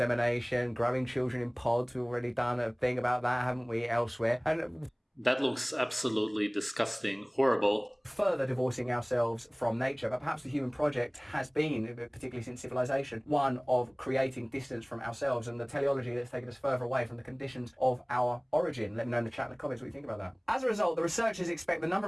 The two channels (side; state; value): both; identical; correlation 1.00